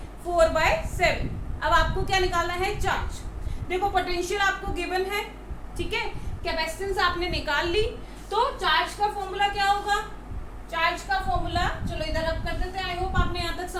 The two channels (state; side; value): identical; both; correlation 1.00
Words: 4/7। अब आपको क्या निकालना है, चार्ज। देखो पोटेंशियल आपको गिवन है, ठीक है, कैपेसिटेंस आपने निकाल ली, तो चार्ज का फॉर्मूला क्या होगा, चार्ज का फॉर्मूला चलो इधर अब कर देते हैं। आई होप आपने यहाँ तक